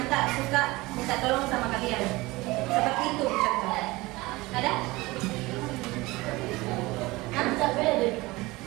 tak suka minta tolong sama kalian. Seperti itu contoh. Ada?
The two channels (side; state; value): left; quieter; 21.4 dB